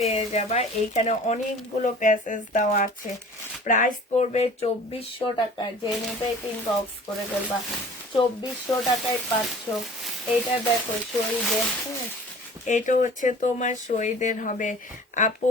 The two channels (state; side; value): normal; both; correlation 0.45